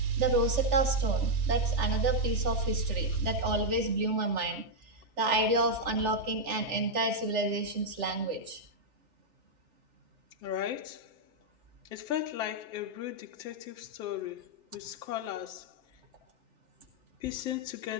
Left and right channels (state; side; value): late; left; 3.4 ms